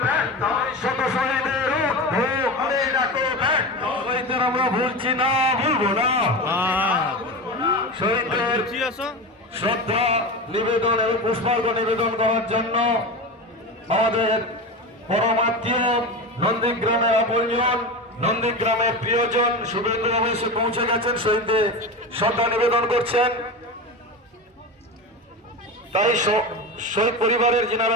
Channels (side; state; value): both; normal; correlation 0.24